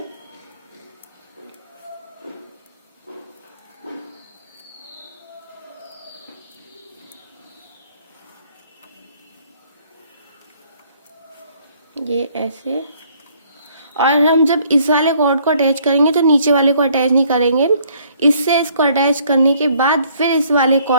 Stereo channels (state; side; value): inverted; both; correlation -0.63